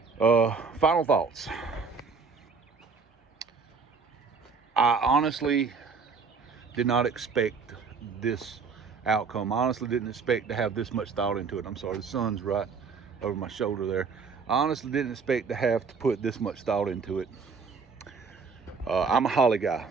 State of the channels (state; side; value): quieter; left; 5.1 dB